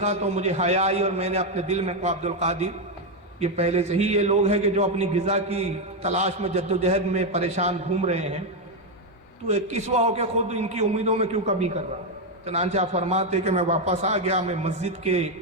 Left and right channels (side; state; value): both; normal; correlation 0.05